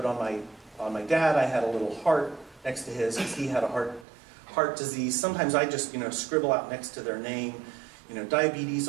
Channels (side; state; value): left; drops out; at 4.0 s